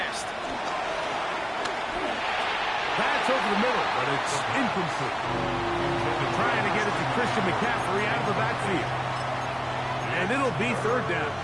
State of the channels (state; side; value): identical; both; correlation 1.00